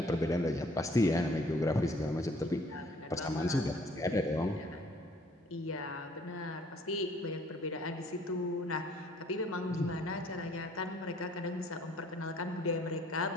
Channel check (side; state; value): both; normal; correlation 0.59